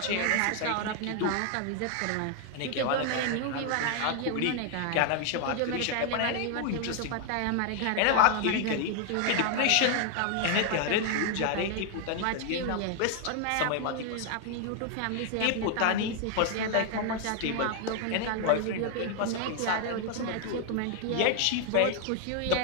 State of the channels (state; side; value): different; both; correlation 0.00